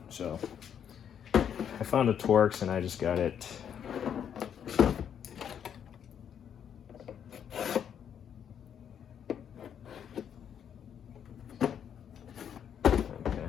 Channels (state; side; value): quieter; right; 8.6 dB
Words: So I found a torx and I just got it.